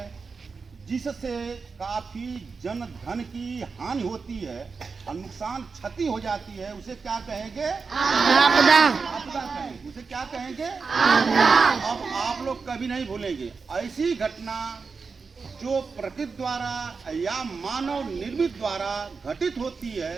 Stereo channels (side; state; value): left; quieter; 4.9 dB